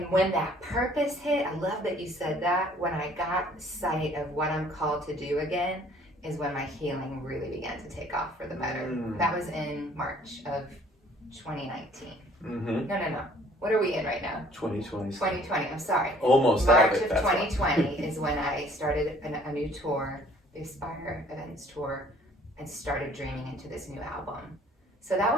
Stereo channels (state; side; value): normal; both; correlation 0.57